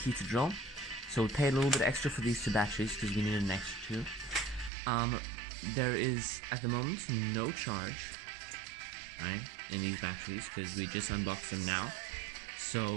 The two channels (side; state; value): left; drops out; at 4.7 s